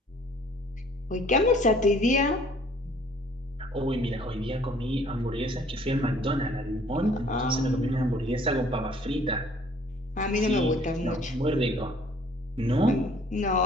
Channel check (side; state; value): both; normal; correlation 0.56